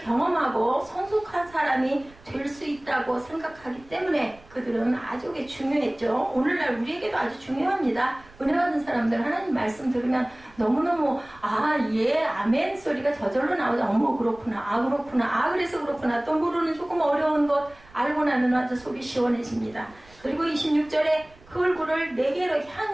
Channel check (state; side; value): noise; right; rumble, 25 dB below the sound